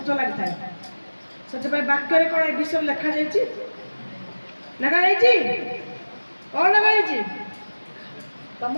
ଲାଗିଥାଏ। ସେଥିପାଇଁ ବାକ୍ୟରେ କ'ଣ ଏ ବିଷୟରେ ଲେଖାଯାଇଛି? ଲେଖାଯାଇଛି କ'ଣ ଲେଖାଯାଇଛି?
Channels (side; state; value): both; inverted; correlation -1.00